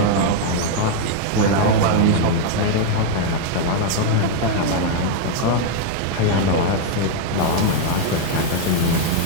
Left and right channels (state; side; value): different; both; correlation 0.00